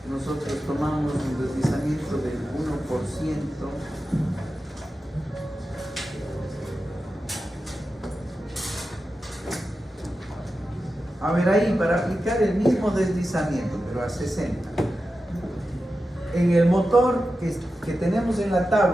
nosotros tomamos un deslizamiento del 1%. A ver ahí, para aplicar el mismo deslizamiento, pero a 60. En el motor que tenemos en la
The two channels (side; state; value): both; normal; correlation 0.92